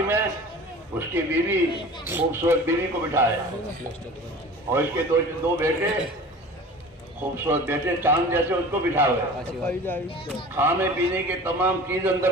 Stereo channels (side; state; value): both; normal; correlation 0.40